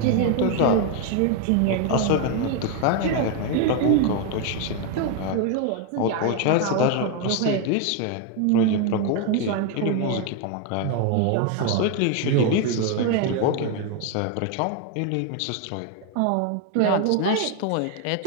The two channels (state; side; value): different; both; correlation 0.01